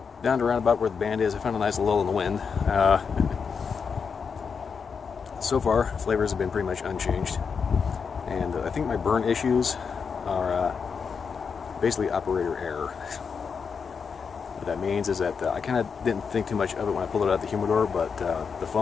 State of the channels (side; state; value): right; quieter; 5.9 dB